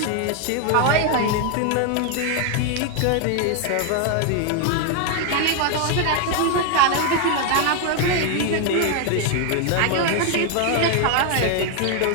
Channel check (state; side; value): different; both; correlation 0.01